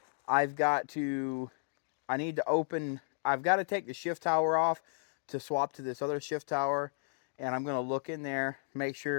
I've got to, I need to open, I've got to take the shift tower off to swap to this other shift tower. And I'm going to look in there, make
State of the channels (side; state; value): right; silent; digital silence